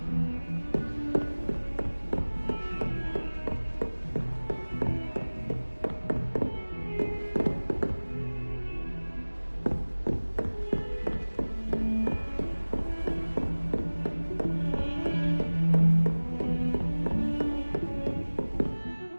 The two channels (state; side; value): inverted; both; correlation -1.00